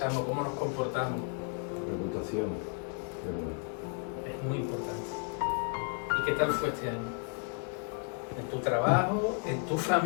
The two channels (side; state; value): right; quieter; 39.4 dB